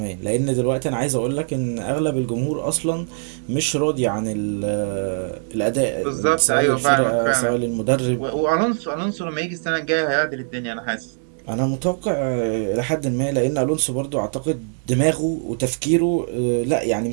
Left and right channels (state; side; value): silent; left; digital silence